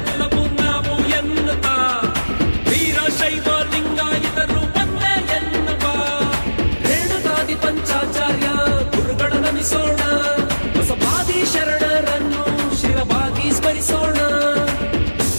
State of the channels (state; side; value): inverted; both; correlation -1.00